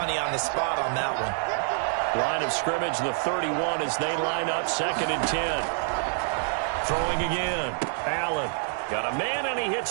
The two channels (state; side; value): silent; left; 60 dB below the other